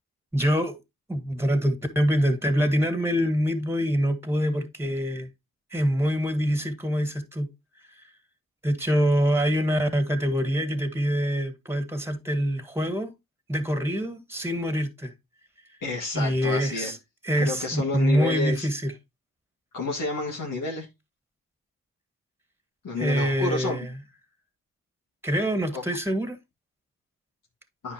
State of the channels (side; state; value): both; normal; correlation 0.79